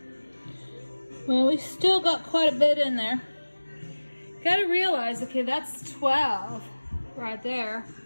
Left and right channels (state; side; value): inverted; both; correlation -1.00